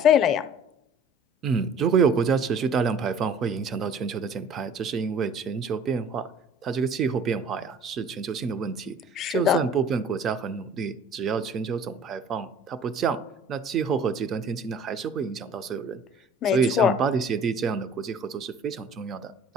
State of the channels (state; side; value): normal; both; correlation 0.49